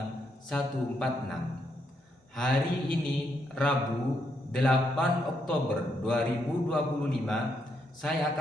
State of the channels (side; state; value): both; normal; correlation 0.78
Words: 146. Hari ini Rabu 8 Oktober 2025 saya